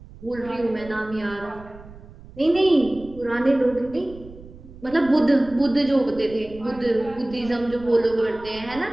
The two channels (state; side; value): noise; right; rumble, 19 dB below the sound